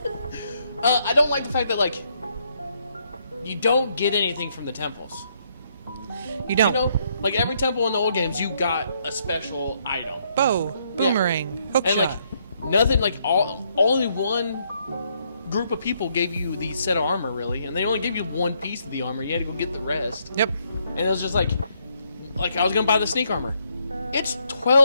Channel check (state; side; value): inverted; both; correlation -0.73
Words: I don't like the fact that, like, you don't get anything from the temples. You don't. You know, like every temple in the old games, you got a special item. Bow, boomerang, hook And shot. like nothing, like only one group of people gave you the set of armor, really, and they only gave you one piece of the armor. You had to go get the rest. Yep. And it was just like I was gonna buy the sneak armor. It's